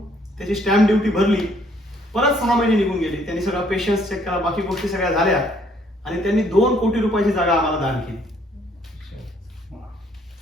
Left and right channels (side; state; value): both; normal; correlation 0.65